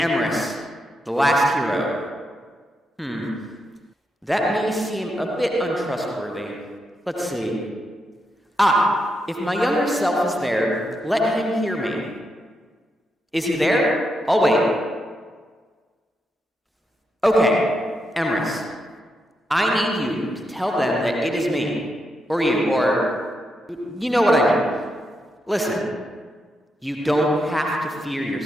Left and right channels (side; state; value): both; normal; correlation 0.83